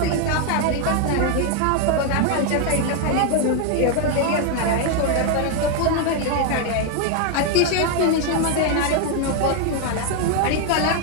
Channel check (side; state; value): both; different; correlation 0.01